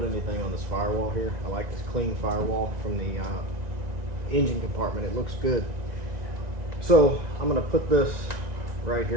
anything on this firewall here. I like this clean firewall from the engine compartment. It looks good. So I'm going to put this right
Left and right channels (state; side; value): late; left; 1.9 ms